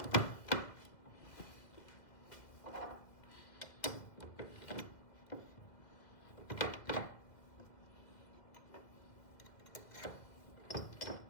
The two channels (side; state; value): right; late; 1.8 ms